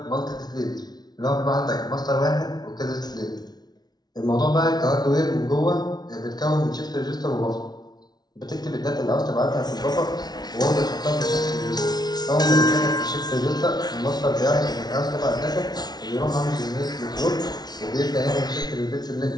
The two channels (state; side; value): late; right; 0.19 ms